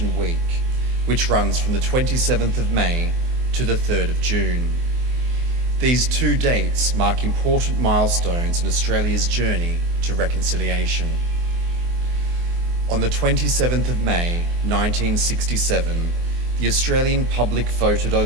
Week, which runs from the 27th of May to the 3rd of June. These two dates mark important milestones in Australia's journey to reconciliation. On the 27th of May, 1967, the Australian public voted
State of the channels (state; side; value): late; left; 24 ms